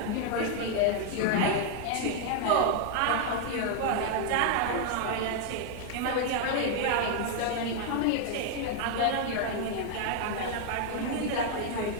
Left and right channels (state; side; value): different; both; correlation 0.00